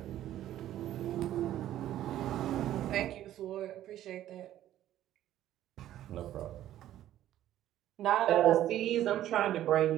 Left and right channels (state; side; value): quieter; left; 12.7 dB